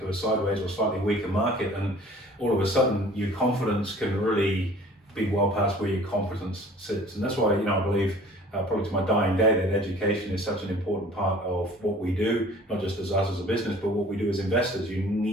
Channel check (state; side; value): normal; both; correlation 0.48